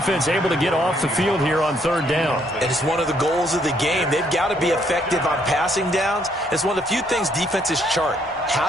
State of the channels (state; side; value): normal; both; correlation 0.69